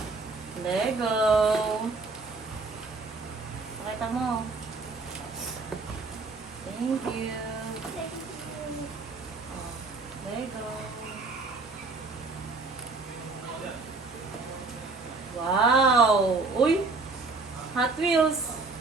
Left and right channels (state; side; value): quieter; left; 3.8 dB